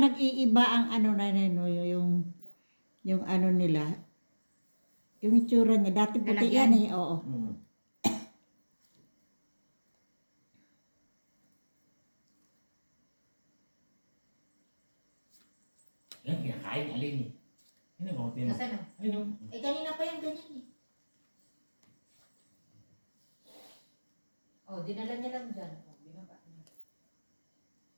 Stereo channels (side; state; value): both; inverted; correlation -1.00